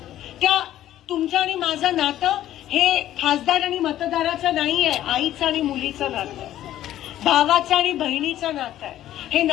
त्या तुमचं आणि माझं नातं हे खासदार आणि मतदाराचं नाहीये, आईचं आणि मुलीचं नातं आहे, भावाचं आणि बहिणीचं नातं आहे. हे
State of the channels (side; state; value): right; quieter; 12.8 dB